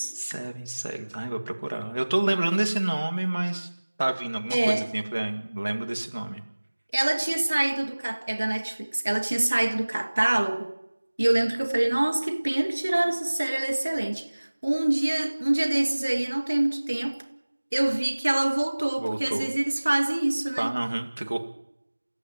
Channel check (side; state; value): both; inverted; correlation -1.00